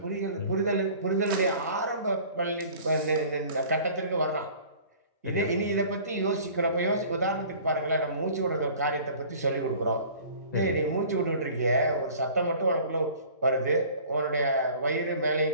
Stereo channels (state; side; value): inverted; both; correlation -0.47